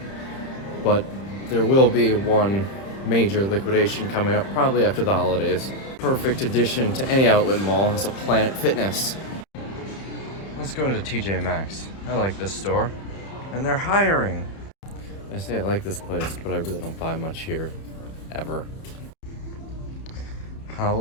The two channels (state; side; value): late; right; 30 ms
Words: but there will be one major liquidation coming up probably after the holidays. Perfect addition to any outlet mall is a Planet Fitness. Let's go into TJ Maxx. I like this store, and they're hiring. I say I like this place, but I really don't buy much here, ever.